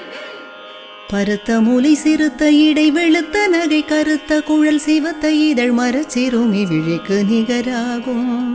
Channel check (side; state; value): both; identical; correlation 1.00